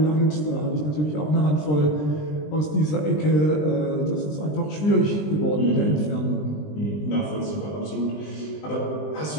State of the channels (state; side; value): late; right; 20 ms